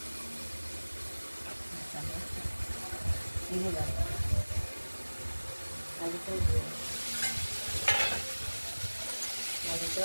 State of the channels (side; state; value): both; inverted; correlation -1.00